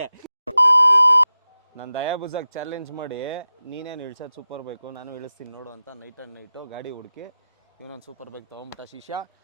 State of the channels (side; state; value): both; inverted; correlation -0.94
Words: ನಾನು ದಯಾಬುಜಾಗ್ ಚಾಲೆಂಜ್ ಮಾಡಿ ನೀನೇನು ಇಳ್ಸೋದು ಸೂಪರ್ ಬೈಕು ನಾನು ಇಳಿಸ್ತೀನಿ ನೋಡು ಅಂತ ನೈಟು ಗಾಡಿ ಹುಡುಕಿ ಇವನೊಂದು ಸೂಪರ್ ಬೈಕ್ ತೊಗೊಂಬಿಟ್ಟ ಶಿಷ್ಯ.